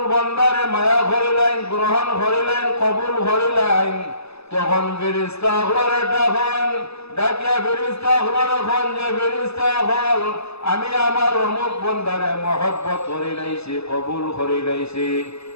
বান্দারে মায়া করিলেন, গ্রহণ করিলেন, কবুল করিলেন, তখন ফেরেশতা হলরে ডাকিয়া ফেরেশতা হলরে খন যে ফেরেশতা হল, আমি আমার অমুক বান্দারে মহব্বত করি লাইছি, কবুল করি লাইছি।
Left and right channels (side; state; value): right; late; 0.79 ms